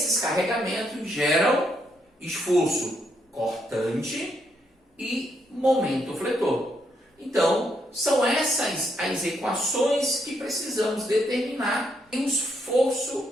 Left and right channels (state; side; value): normal; both; correlation 0.76